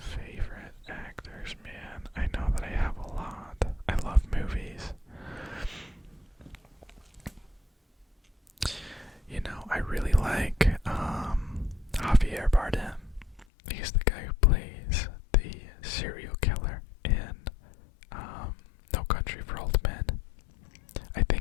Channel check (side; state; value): right; drops out; at 13.5 s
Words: actors, man. I know that I have a lot. I love movies. You know, I really like Javier Bardem. He's the guy who plays the serial killer in No Country for Old Men. I